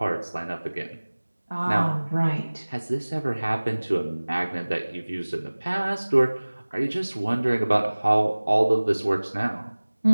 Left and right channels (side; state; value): both; inverted; correlation -1.00